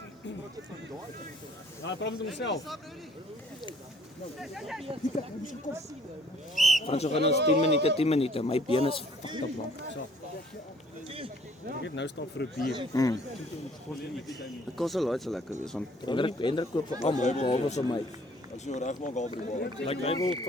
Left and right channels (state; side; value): normal; both; correlation 0.58